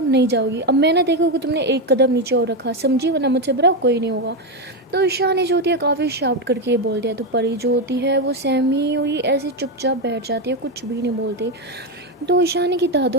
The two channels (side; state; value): both; normal; correlation 0.09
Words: नहीं जाओगी। अब मैं ना देखो कि तुमने एक कदम नीचे और रखा, समझी, वरना मुझसे बुरा कोई नहीं होगा। तो ईशानी जो होती है काफ़ी शाउट करके ये बोल दिया। तो परी जो होती है वो सहमी हुई ऐसे चुपचाप बैठ जाती है, कुछ भी नहीं बोलती। तो ईशानी की